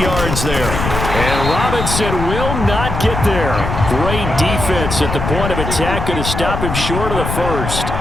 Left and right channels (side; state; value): left; noise; rumble, 4 dB below the sound